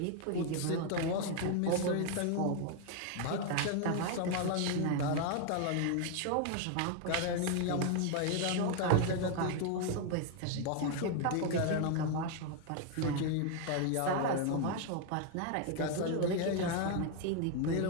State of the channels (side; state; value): both; different; correlation 0.01